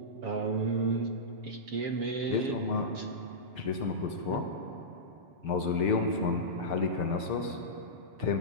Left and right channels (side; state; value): left; late; 6.7 ms